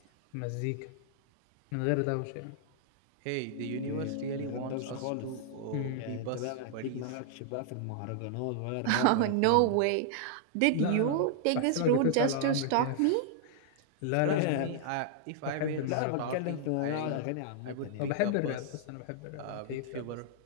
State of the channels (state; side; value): different; both; correlation -0.01